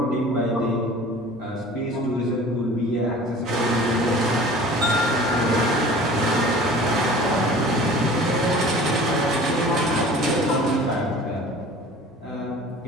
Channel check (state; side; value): normal; both; correlation 0.44